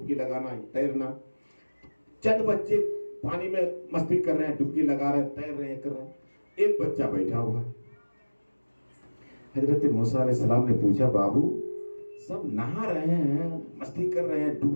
लगाना, तैरना। चंद बच्चे पानी में मस्ती कर रहे हैं, डुबकी लगा रहे हैं, तैर रहे हैं, कर रहे हैं। एक बच्चा बैठा हुआ। हजरत मूसा अलैहिस्सलाम ने पूछा, बाबू सब नहा रहे हैं, मस्ती कर रहे हैं,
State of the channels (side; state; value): both; inverted; correlation -1.00